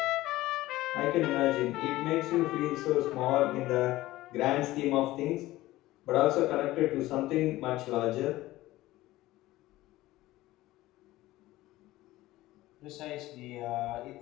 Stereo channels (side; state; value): right; quieter; 17.1 dB